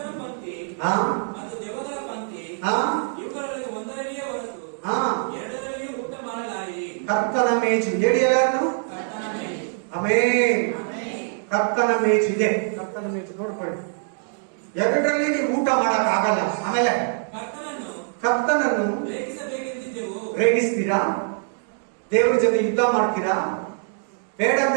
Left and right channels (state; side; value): silent; left; 63 dB below the other